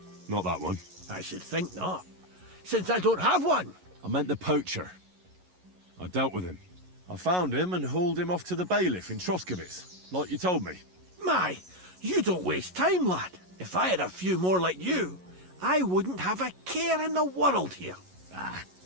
not that one. I should think not, since I don't have one. I meant the poacher. I dealt with him. I found him and hauled him off to the bailiff in Troskovic, like you told me. My, you don't waste time, lad. If I had a few more like you, I wouldn't have a care in the world here. Ah,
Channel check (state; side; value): late; left; 11 ms